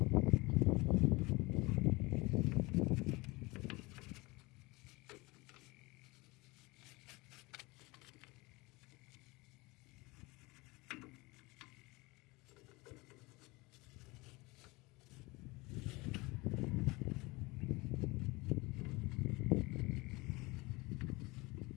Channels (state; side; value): quieter; right; 23.7 dB